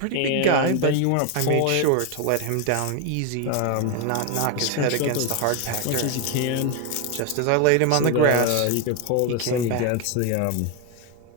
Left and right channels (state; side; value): different; both; correlation 0.01